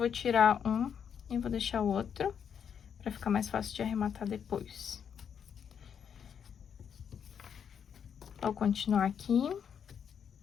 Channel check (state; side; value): quieter; right; 7.7 dB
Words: tirar um e vou deixar o outro, pra ficar mais fácil de arrematar depois. Vou continuar aqui.